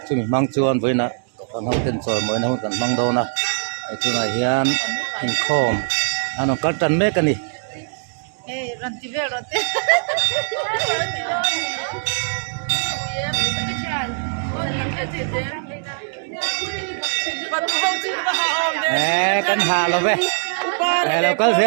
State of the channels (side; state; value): left; silent; 65 dB below the other